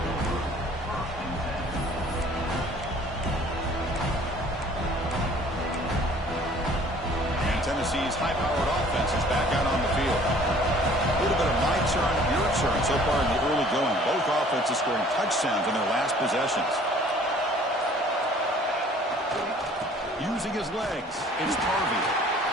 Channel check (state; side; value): normal; both; correlation 0.53